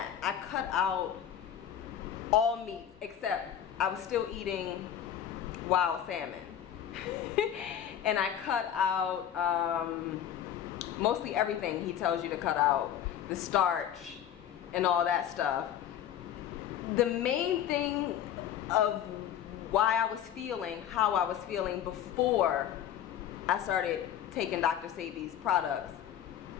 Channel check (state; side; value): quieter; right; 10.0 dB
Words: I cut out all meat, except I was still eating wild salmon. And I cut out mostly everything he tells you to cut out, the starch and all that stuff. The main thing of why I was feeling how I was feeling before I started taking Dr. Sebi's products,